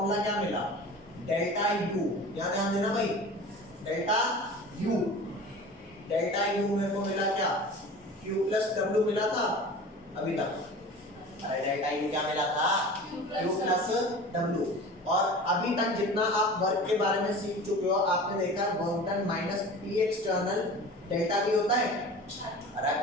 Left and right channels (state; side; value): normal; both; correlation 0.38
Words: क्या मिला? डेल्टा यू, याद ध्यान देना भाई, डेल्टा यू मेरे को मिला क्या? Q प्लस W मिला था अभी तक। अरे डेल्टा यू क्या मिला था? Q plus W। और अभी तक जितना आप वर्क के बारे में सीख चुके हो, आपने देखा work done minus P external delta V होता है। अरे